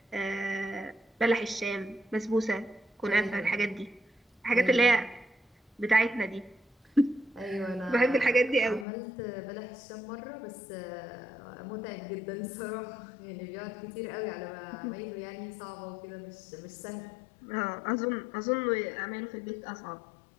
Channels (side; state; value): right; drops out; at 8.8 s